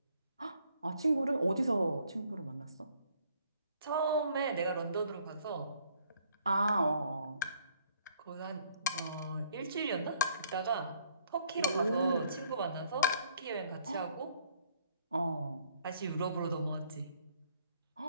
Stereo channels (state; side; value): inverted; both; correlation -0.64